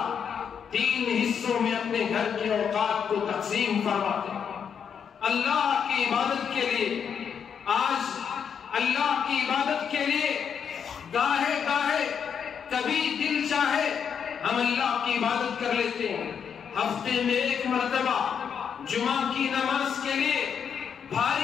3 حصوں میں اپنے گھر کے اوقات کو تقسیم فرماتے اللہ کی عبادت کے لیے۔ آج اللہ کی عبادت کے لیے گاہے گاہے کبھی دل چاہے ہم اللہ کی عبادت کر لیتے ہیں، ہفتے میں 1 مرتبہ جمعہ کی نماز کے لیے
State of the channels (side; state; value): right; quieter; 7.4 dB